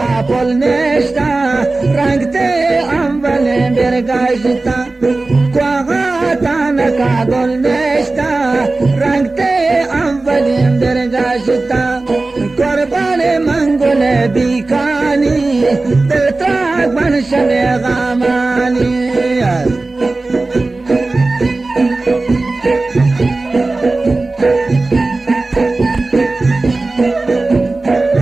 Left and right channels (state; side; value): quieter; left; 3.3 dB